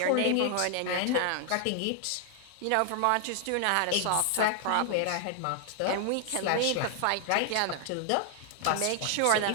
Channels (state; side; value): different; both; correlation 0.00